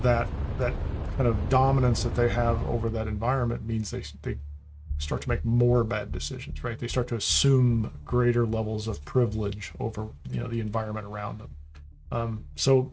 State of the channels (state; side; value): identical; both; correlation 1.00